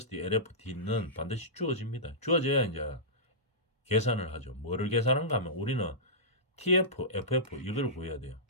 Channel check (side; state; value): both; normal; correlation -0.17